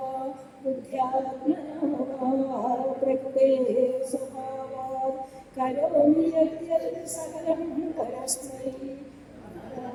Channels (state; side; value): identical; both; correlation 1.00